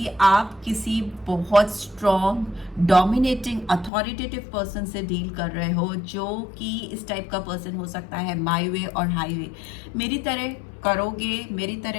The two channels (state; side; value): drops out; right; at 3.9 s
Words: आप किसी बहुत स्ट्रॉन्ग, डोमिनेटिंग, अथॉरिटेटिव पर्सन से डील कर रहे हो, जो कि इस टाइप का पर्सन हो सकता है माय वे और हाईवे। मेरी तरह करोगे, मेरी